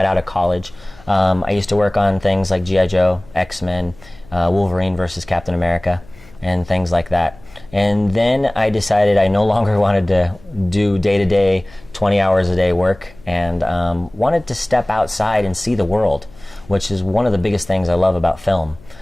out of college. I used to work on things like G.I. Joe, X-Men, Wolverine versus Captain America, and things like that. And then I decided I no longer wanted to do day-to-day, 20 hours a day work, and wanted to step outside and see the world, which is one of the biggest things I love about film.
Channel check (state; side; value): noise; left; hum, 24 dB below the sound